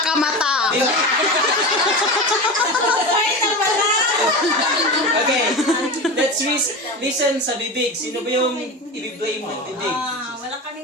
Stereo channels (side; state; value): both; normal; correlation 0.26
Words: ka mata. Okay, let's listen sa bibig. Sino ba yung i-blame ng bibig? Wala